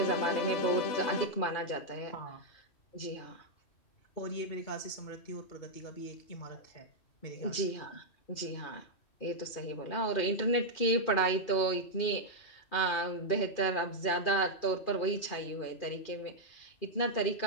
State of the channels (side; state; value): right; late; 2.4 ms